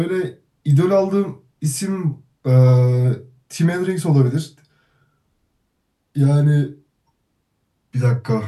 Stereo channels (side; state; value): both; identical; correlation 1.00